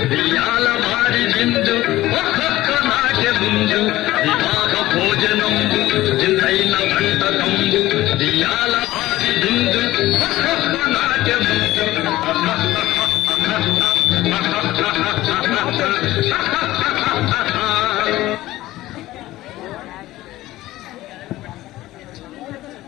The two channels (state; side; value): quieter; right; 16.5 dB